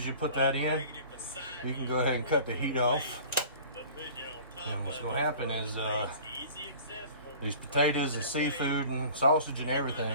you put that in, you can go ahead and cut the heat off. And what's gonna happen is these potatoes and seafood and sausage and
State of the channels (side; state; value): both; inverted; correlation -0.44